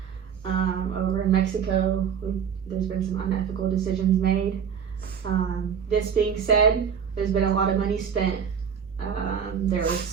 over in Mexico. There's been some unethical decisions made. This being said, there's been a lot of money spent. There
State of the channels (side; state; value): left; quieter; 7.4 dB